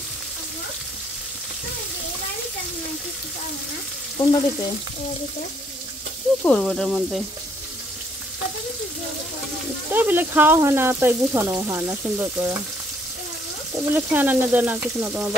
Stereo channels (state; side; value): normal; both; correlation 0.67